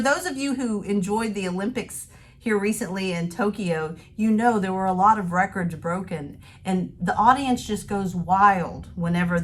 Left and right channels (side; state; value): both; identical; correlation 1.00